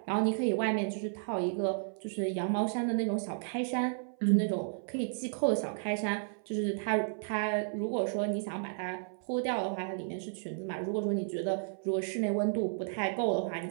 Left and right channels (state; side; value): silent; left; 56 dB below the other